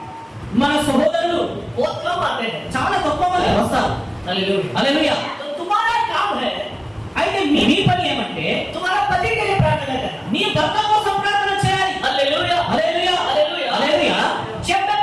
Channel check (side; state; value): both; identical; correlation 1.00